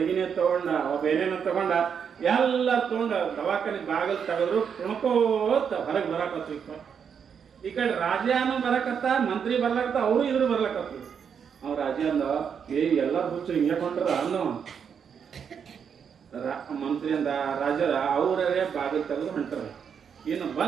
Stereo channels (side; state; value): left; quieter; 7.2 dB